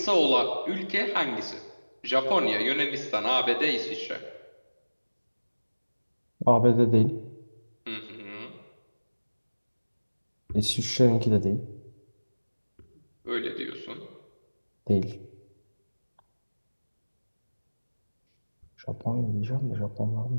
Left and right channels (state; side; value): inverted; both; correlation -1.00